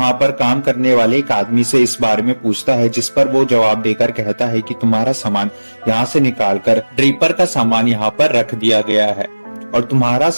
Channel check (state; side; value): inverted; both; correlation -1.00